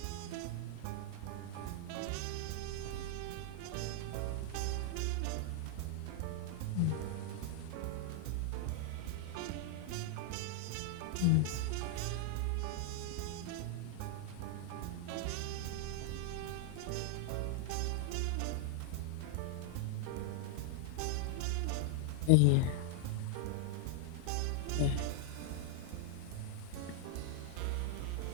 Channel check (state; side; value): different; both; correlation -0.01